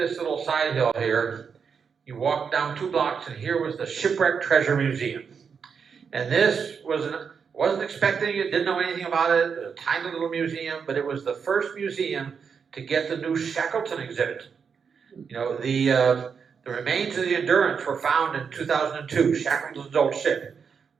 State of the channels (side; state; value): left; quieter; 6.3 dB